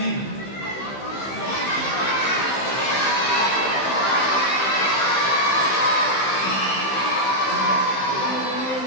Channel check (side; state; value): right; late; 15 ms